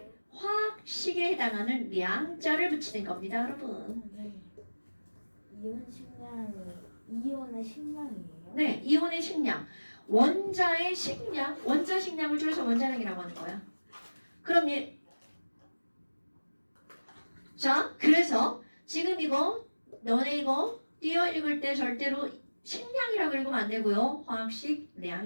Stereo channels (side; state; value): both; inverted; correlation -1.00